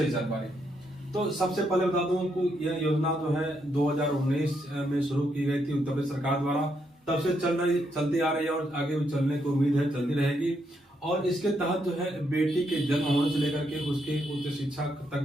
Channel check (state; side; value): normal; both; correlation 0.78